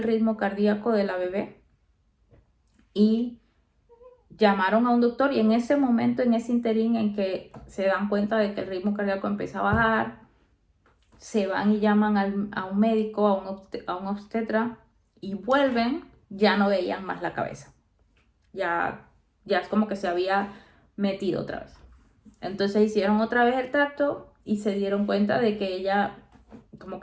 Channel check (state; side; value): identical; both; correlation 1.00